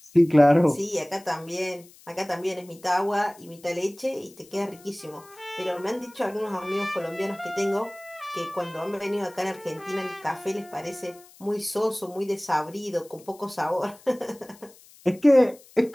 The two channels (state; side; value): noise; left; hiss, 24 dB below the sound